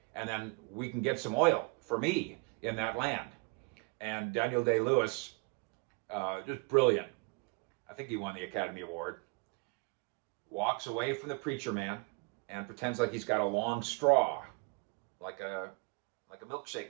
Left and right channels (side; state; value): left; quieter; 29.7 dB